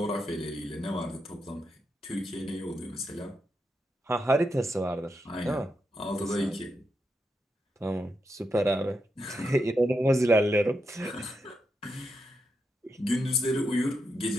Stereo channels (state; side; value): normal; both; correlation 0.84